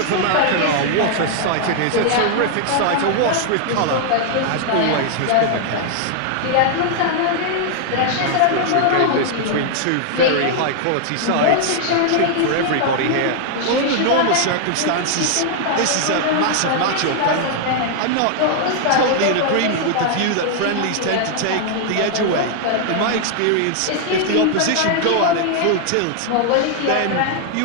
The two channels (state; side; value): different; both; correlation 0.00